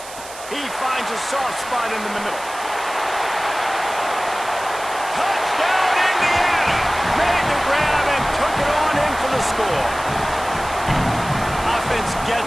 He finds a soft spot in the middle. Touchdown, Indiana! Made the grab and took it on in for the score. Offense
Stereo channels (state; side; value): noise; right; hiss, 15 dB below the sound